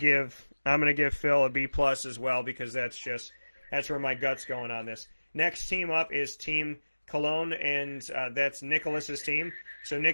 Phil a B+ as well because that's where my gut's going on this. Next team up is Team Cologne, and that's Nicholas's team. So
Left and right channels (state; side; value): inverted; both; correlation -1.00